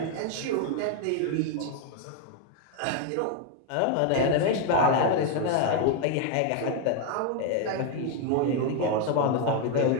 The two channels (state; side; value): different; both; correlation 0.01